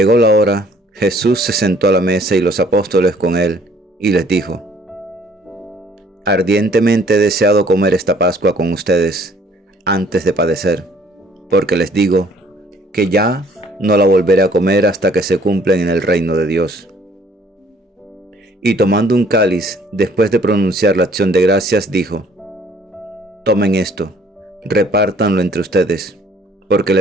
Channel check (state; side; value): normal; both; correlation 0.59